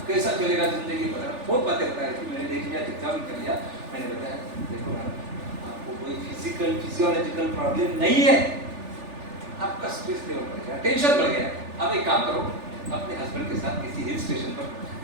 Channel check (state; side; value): late; left; 3.4 ms